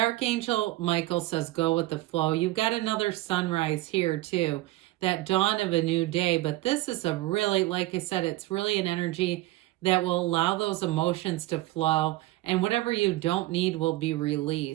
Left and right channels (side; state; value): left; quieter; 18.1 dB